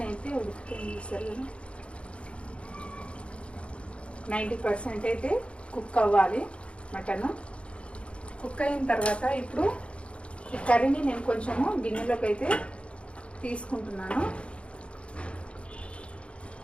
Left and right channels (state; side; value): late; right; 0.059 ms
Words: అయితే ఉడికిపోయింది. చూసారు కదా, 90% అయితే కుక్ అవ్వాలి మటన్. కుక్ అయిన తర్వాత ఇప్పుడు ఈ కర్రీని నేను కొంచెము గిన్నెలోకి అయితే తీసుకుంటున్నాను.